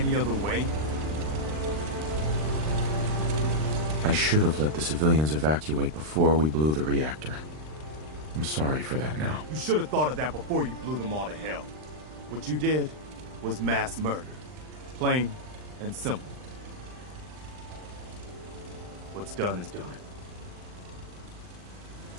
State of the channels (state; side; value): late; left; 39 ms